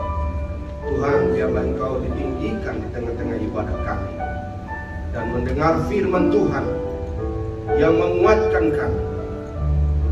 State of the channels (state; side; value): identical; both; correlation 1.00